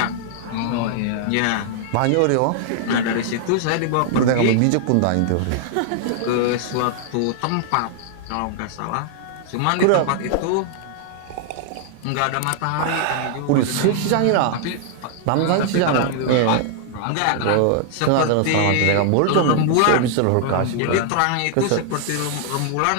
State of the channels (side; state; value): both; different; correlation 0.00